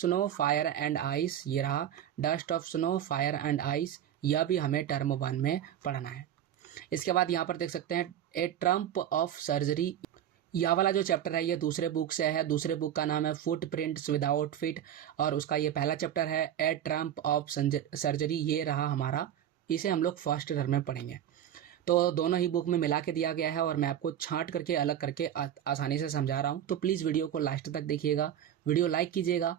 fire and ice, ये रहा dust of snow fire and ice, यह भी हमें टर्म 1 में पढ़ना है। इसके बाद यहाँ पर देख सकते हैं ए ट्रम्प ऑफ सर्जरी, यह वाला जो चैप्टर है ये दूसरे बुक से है। दूसरे बुक का नाम है फुटप्रिंट्स विदाउट फीट, और उसका ये पहला चैप्टर है ए ट्रम्प ऑफ सर्जरी, ये रहा हमारा। इसे हम लोग फर्स्ट टर्म में पढ़ेंगे। तो दोनों ही बुक में मिला के दिया गया है और मैं आपको छांट करके अलग करके आसानी से समझा रहा हूँ। तो प्लीज़ वीडियो को लास्ट तक देखिएगा, वीडियो लाइक कीजिएगा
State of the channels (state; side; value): quieter; left; 10.5 dB